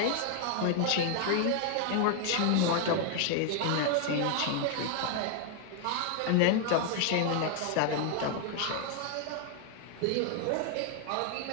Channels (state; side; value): different; both; correlation 0.00